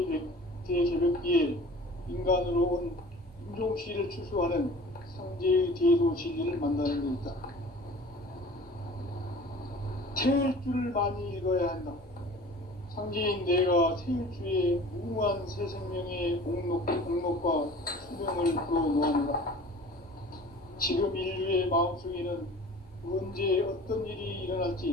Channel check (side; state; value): both; normal; correlation 0.44